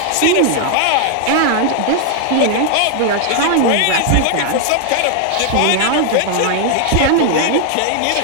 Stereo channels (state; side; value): different; both; correlation 0.00